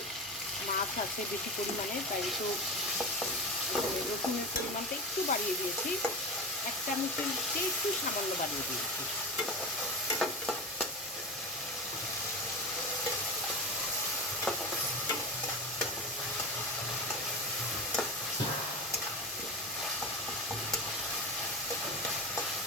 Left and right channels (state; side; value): normal; both; correlation 0.24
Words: মাছ আছে বেশি পরিমাণে, তাই একটু রসুনের পরিমাণটা একটু বাড়িয়ে দিয়েছি, 1 চামচের চেয়ে একটু সামান্য বাড়িয়ে দিয়েছি।